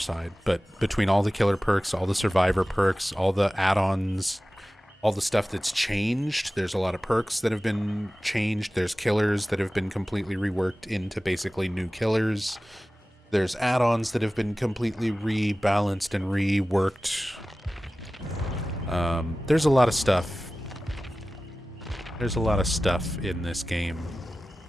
But between all the killer perks, all the survivor perks, all the add-ons, all the stuff that's changed, there's a lot of perks that have been changed. There's killers that have been completely reworked into basically new killers. There's add-ons that have been completely rebalanced and reworked. There's a lot of stuff. There's a lot of stuff in this game.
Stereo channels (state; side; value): normal; both; correlation 0.96